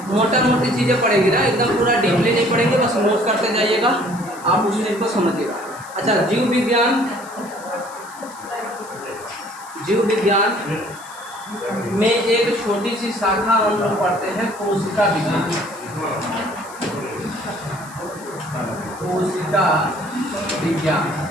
मोटा मोटी चीज़ें पढ़ेंगे ना, एकदम पूरा डीपली नहीं पढ़ेंगे, बस नोट करते जाइएगा, आप उस चीज़ को समझिएगा। अच्छा, जीव विज्ञान, जीव विज्ञान में एक छोटी सी शाखा हम लोग पढ़ते हैं कोशिका विज्ञान। कोशिका विज्ञान,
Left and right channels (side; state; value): left; noise; hiss, 19 dB below the sound